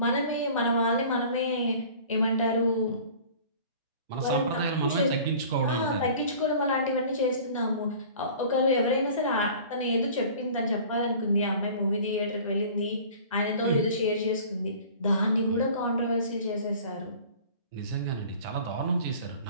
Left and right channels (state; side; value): inverted; both; correlation -0.45